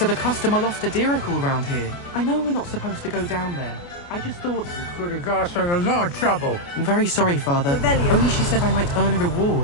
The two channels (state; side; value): late; right; 29 ms